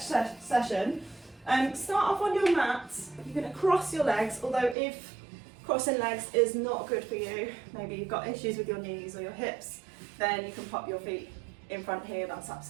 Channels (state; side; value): drops out; left; at 4.8 s